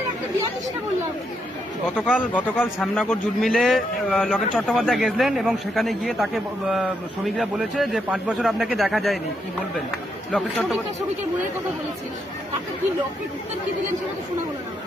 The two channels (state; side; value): normal; both; correlation 0.79